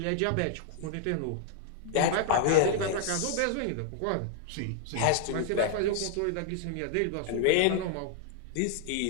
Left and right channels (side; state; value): both; different; correlation 0.00